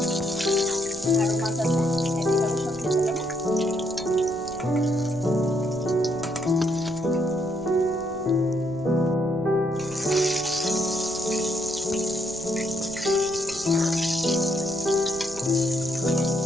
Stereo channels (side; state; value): right; noise; rumble, 19 dB below the sound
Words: আরো মাছ আছে, একইভাবে সব খেতে দেবো।